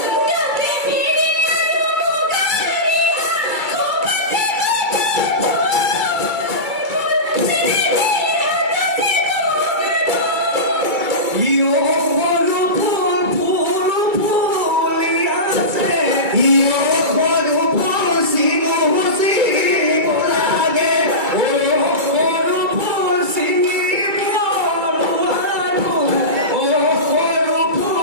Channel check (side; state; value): left; late; 2.3 ms